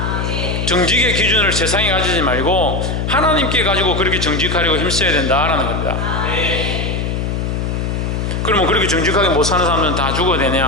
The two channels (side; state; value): left; noise; hum, 1 dB below the sound